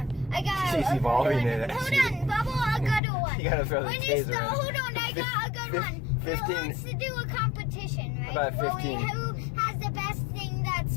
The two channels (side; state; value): right; drops out; at 3.0 s